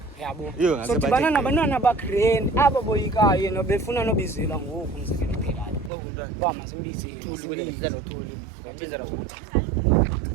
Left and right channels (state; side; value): drops out; left; at 5.9 s